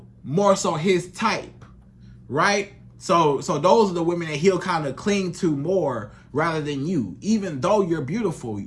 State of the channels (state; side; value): identical; both; correlation 1.00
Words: more so his type, right? So those are the women that he'll kind of cling to more rather than you. Even though you're beautiful,